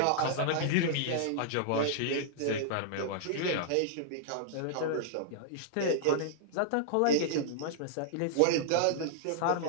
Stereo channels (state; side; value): different; both; correlation -0.01